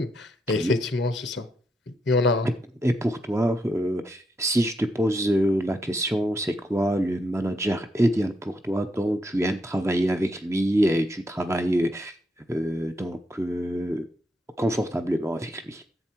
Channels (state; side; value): normal; both; correlation 0.80